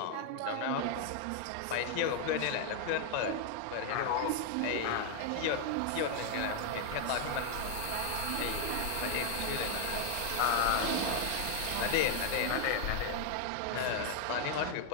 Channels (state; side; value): different; both; correlation 0.00